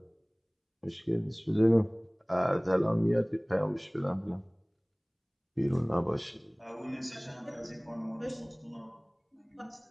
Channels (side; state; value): both; identical; correlation 1.00